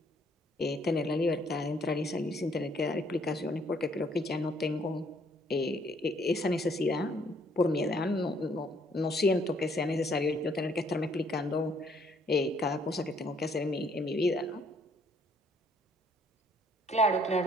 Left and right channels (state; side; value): normal; both; correlation 0.65